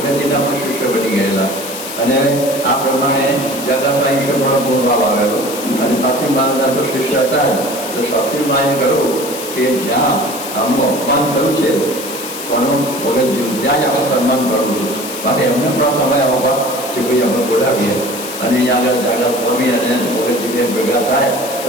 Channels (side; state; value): left; noise; hiss, 9 dB below the sound